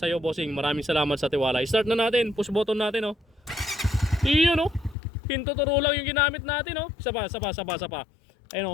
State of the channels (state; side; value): drops out; right; at 5.0 s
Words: iyo Bossing, maraming salamat sa tiwala. Start na natin, push button natin o. Yun o, hintuturo lang yung ginamit natin o. Isa pa. Ayun